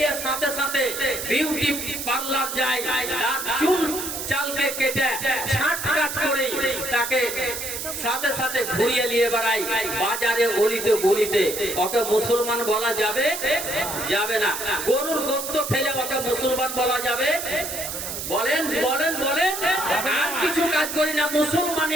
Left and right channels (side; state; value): right; noise; hiss, 5 dB below the sound